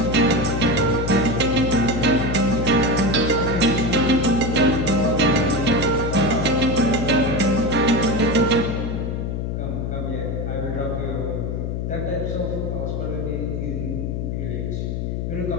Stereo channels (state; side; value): noise; left; hum, 2 dB below the sound